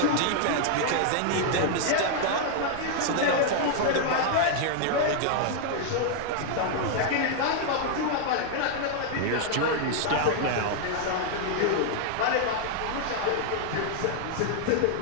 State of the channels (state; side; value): different; both; correlation 0.00